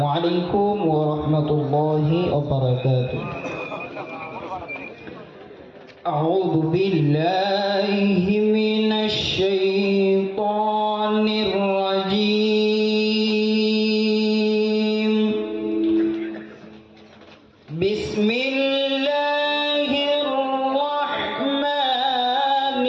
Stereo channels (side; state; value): both; identical; correlation 1.00